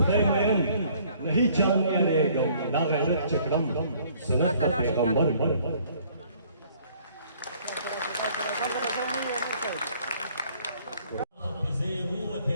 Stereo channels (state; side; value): inverted; both; correlation -0.59